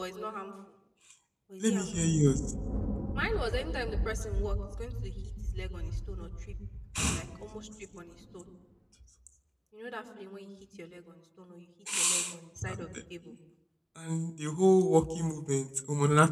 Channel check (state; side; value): identical; both; correlation 1.00